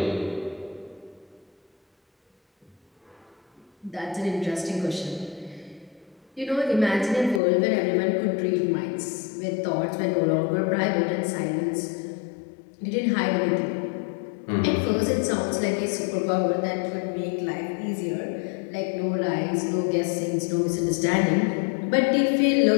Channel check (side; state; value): right; drops out; at 7.4 s